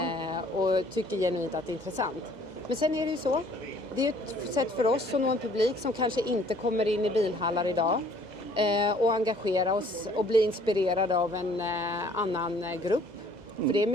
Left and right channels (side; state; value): left; late; 2.0 ms